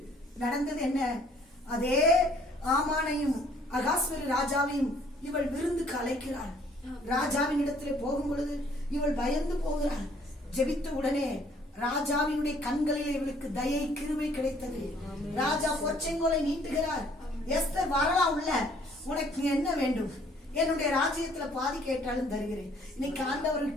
நடந்தது என்ன? அதே ஆமானையும் அகாஸ்வர ராஜாவையும் இவள் விருந்துக்கு அழைக்கிறாள். ராஜாவின் இடத்துல போகும் பொழுது இவள் பயந்து போகிறாள். ஜெபித்த உடனே ராஜாவினுடைய கண்களில் இவளுக்கு தயை கிருபை கிடைத்தது. ராஜா பொற்செங்கோலை நீட்டுகிறார். எஸ்தர் வரலாம் உள்ள, உனக்கு என்ன வேண்டும்? என்னுடைய ராஜ்யத்துல பாதி கேட்டாலும் தருகிறேன். இன்னைக்கு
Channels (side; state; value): both; normal; correlation 0.60